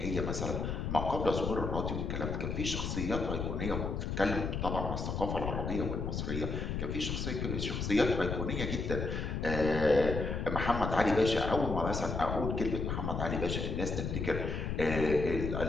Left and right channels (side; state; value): left; noise; rumble, 2 dB below the sound